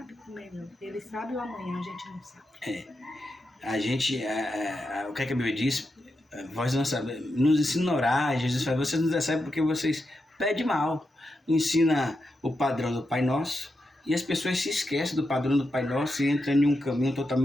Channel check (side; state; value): both; normal; correlation 0.87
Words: o melhor. Ele sabe o amanhã, a gente não sabe. A gente, o que a Bíblia diz? Vós não sabemos, nos ensina a orar. Jesus fala: vocês não recebem porque vocês pedem mal. Ensina o padrão do Pai Nosso e as pessoas se esquecem do padrão do Pai Nosso e entram em um caminho